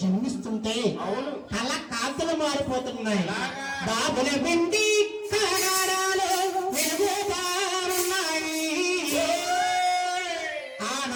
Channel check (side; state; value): both; identical; correlation 1.00